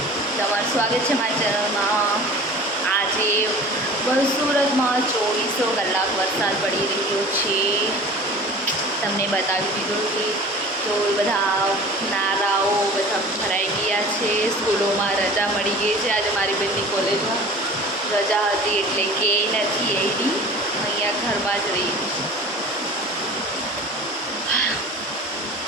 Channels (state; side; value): normal; both; correlation 0.41